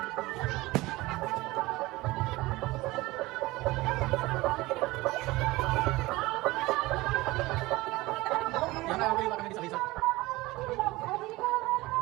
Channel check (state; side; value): quieter; left; 20.2 dB